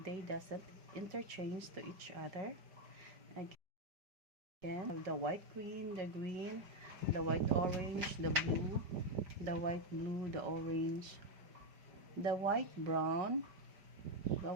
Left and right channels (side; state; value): left; late; 5.0 ms